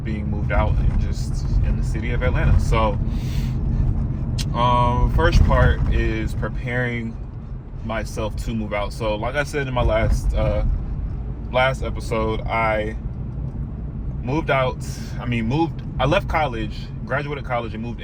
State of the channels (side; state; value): both; identical; correlation 1.00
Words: being moved out and just in the city of Atlanta. So first part is preparing myself to move out. So like I said in my last episode, I left college, graduated college, and moved